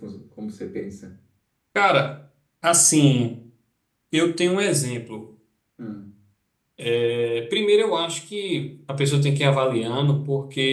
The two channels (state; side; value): identical; both; correlation 1.00